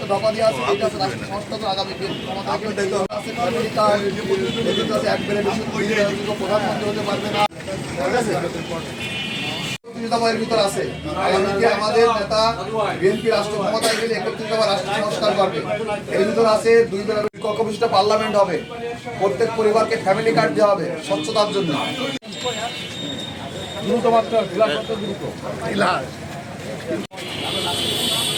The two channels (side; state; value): both; identical; correlation 1.00